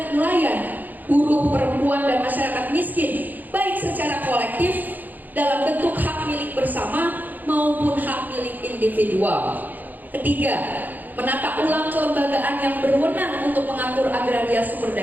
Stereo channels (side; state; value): left; late; 0.084 ms